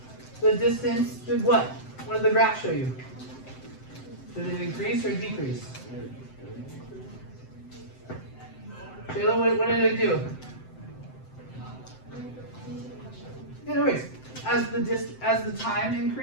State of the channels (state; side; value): late; right; 7.8 ms